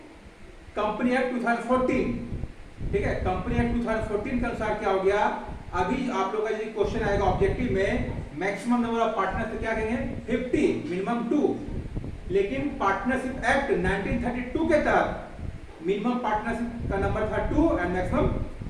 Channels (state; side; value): identical; both; correlation 1.00